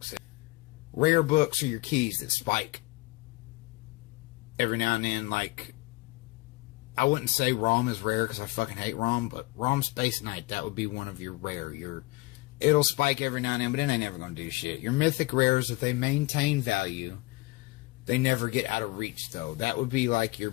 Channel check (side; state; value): right; quieter; 21.9 dB